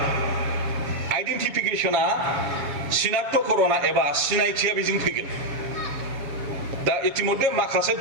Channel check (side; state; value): left; late; 7.2 ms